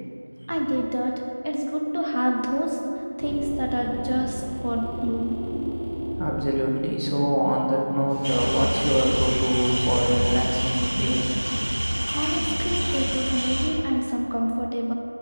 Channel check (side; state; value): both; inverted; correlation -1.00